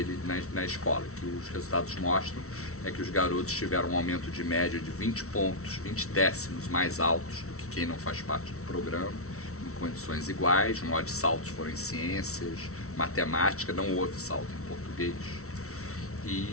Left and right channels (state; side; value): late; right; 0.63 ms